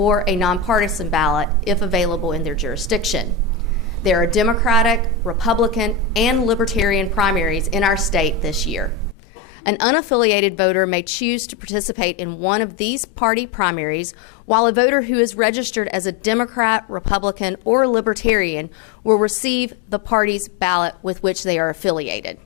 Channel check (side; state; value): right; drops out; at 9.2 s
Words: a nonpartisan ballot if available in their jurisdiction. There are Democratic, Republican, and Libertarian primaries in our state this year. An unaffiliated voter may choose to participate in one of these party primaries, while a voter who is registered as a Democrat, Republican, or Libertarian will receive the party's ballot with which they are affiliated.